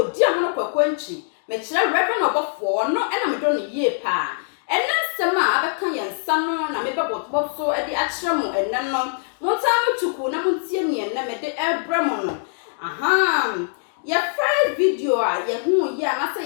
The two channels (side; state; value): right; silent; digital silence